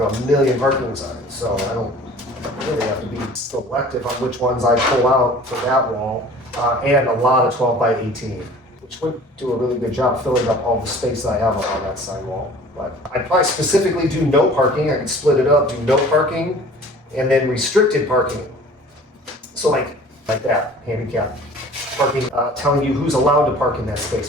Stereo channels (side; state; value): both; normal; correlation 0.46